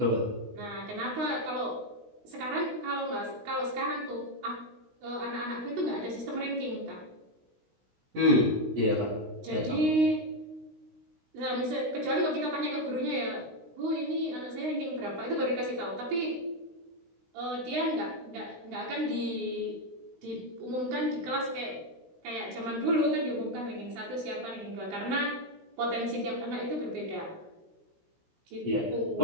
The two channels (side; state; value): left; late; 16 ms